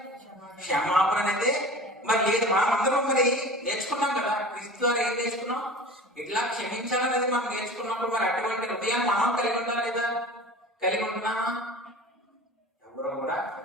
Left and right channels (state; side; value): normal; both; correlation 0.38